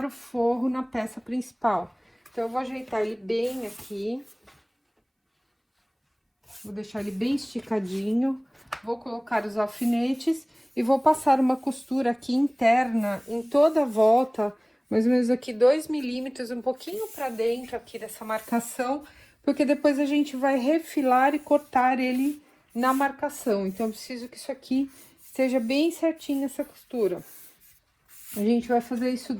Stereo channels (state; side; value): identical; both; correlation 1.00